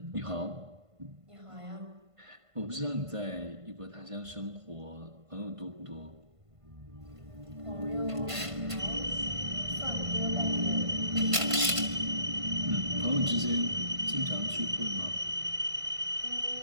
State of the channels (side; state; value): left; late; 1.5 ms